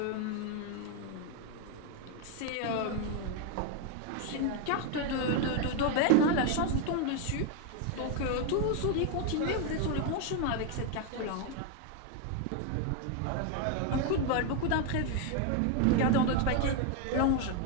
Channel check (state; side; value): different; both; correlation 0.01